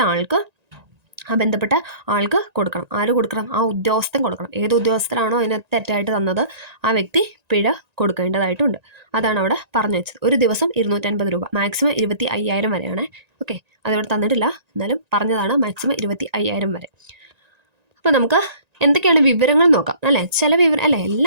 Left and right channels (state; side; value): late; left; 1.9 ms